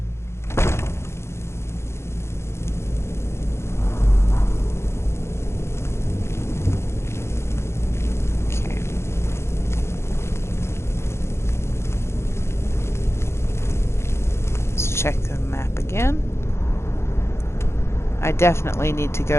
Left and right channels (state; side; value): late; right; 0.13 ms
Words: Okay. Let's check the map again. I definitely need to